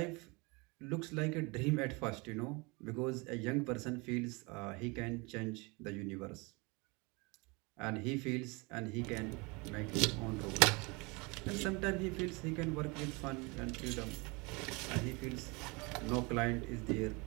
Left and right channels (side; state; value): left; quieter; 27.8 dB